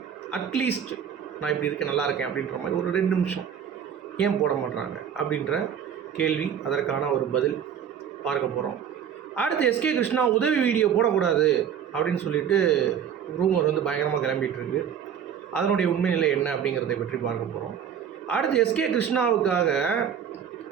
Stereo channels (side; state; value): left; quieter; 8.3 dB